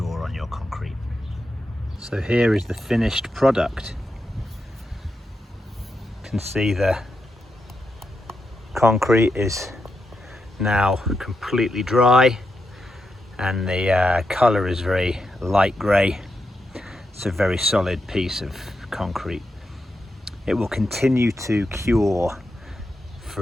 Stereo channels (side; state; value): both; normal; correlation 0.85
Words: on your concrete. So here is the finished product. Can see the concrete is now completely dry, and the colour is very light grey. It's a very solid piece of concrete. It will continue to cure